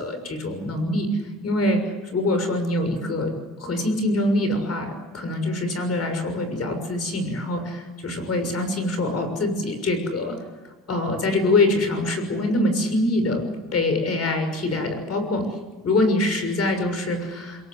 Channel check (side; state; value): both; normal; correlation 0.39